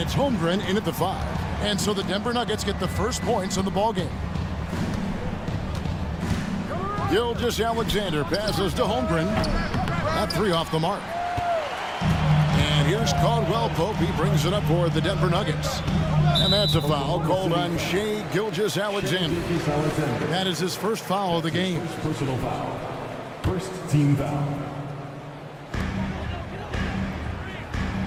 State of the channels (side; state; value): both; identical; correlation 1.00